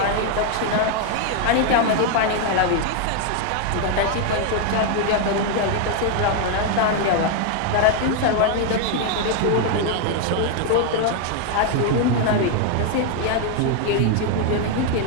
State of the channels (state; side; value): different; both; correlation 0.00